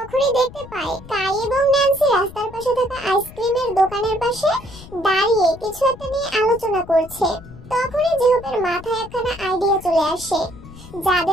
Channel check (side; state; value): left; noise; rumble, 17 dB below the sound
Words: দেখতে পায় কাই এবং ন্যান্সি রাস্তার পাশে থাকা আইসক্রিমের দোকানের পাশে দাঁড়িয়ে কিছু একটা নিয়ে আলোচনা করছে। তখনই জেহুপের মাথায় একখানা আইডিয়া চলে আসে।